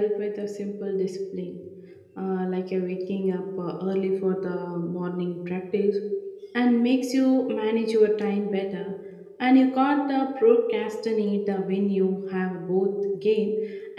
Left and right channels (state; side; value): identical; both; correlation 1.00